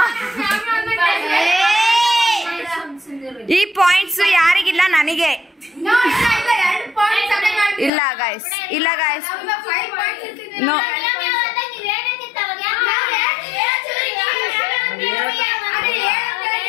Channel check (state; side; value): drops out; right; at 7.9 s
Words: ಈ ಪಾಯಿಂಟ್ಸ್ ಯಾರಿಗಿಲ್ಲ, ನನಗೆ. ಇಲ್ಲ ಗೈಸ್, ಇಲ್ಲ ಗೈಸ್. ನೋ